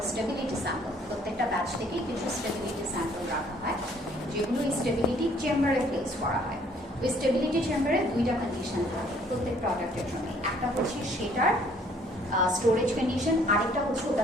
স্টেবিলিটি স্যাম্পল। প্রত্যেকটা ব্যাচ থেকে কিছু স্টেবিলিটি স্যাম্পল রাখা হয়, যেগুলো এই স্টেবিলিটি চেম্বারে প্লেস করা হয়। ওই স্টেবিলিটি চেম্বারে দুইটা কন্ডিশন থাকে প্রত্যেক প্রোডাক্টের জন্য, একটা হচ্ছে সেটার স্টোরেজ কন্ডিশন, আরেকটা হচ্ছে ওটা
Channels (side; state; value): both; normal; correlation 0.60